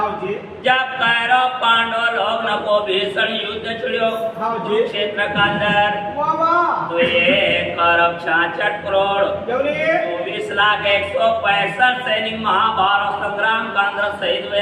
जब कौरव पांडव लोग न को भीषण युद्ध छिड़ो क्षेत्र का अंदर तो ये कौरव 66 करोड़ 24,165 सैनिक महाभारत संग्राम का अंदर शहीद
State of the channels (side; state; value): both; identical; correlation 1.00